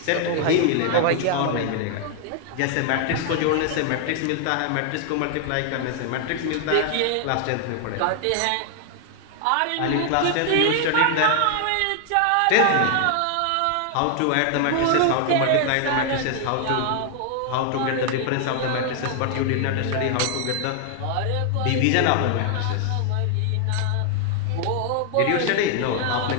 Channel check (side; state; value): both; different; correlation 0.00